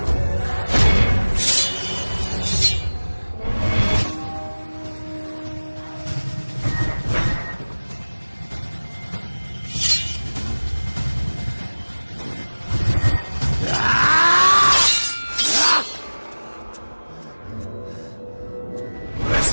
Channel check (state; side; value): inverted; both; correlation -1.00